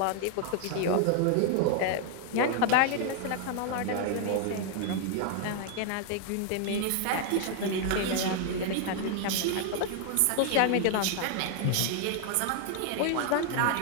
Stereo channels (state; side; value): different; both; correlation 0.00